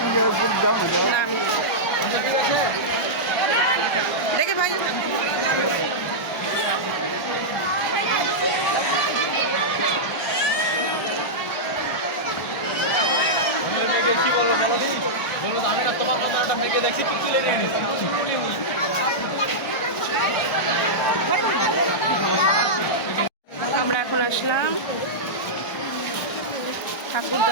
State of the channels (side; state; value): right; late; 1.2 ms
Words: না আমি দেখে ভাই। কি বলবো বলো আমি না তোমার মতো একটা মেয়েকে দেখছি তুই তুলে নিয়ে নিস। আমরা এখন আসলাম ঠাকুর